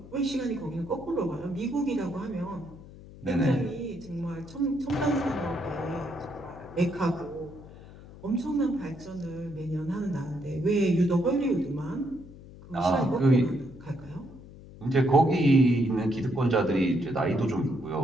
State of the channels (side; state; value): left; noise; hum, 18 dB below the sound